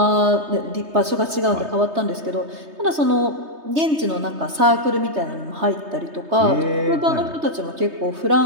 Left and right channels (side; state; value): left; late; 3.2 ms